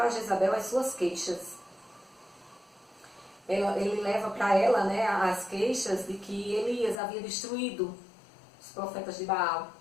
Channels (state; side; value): drops out; right; at 7.0 s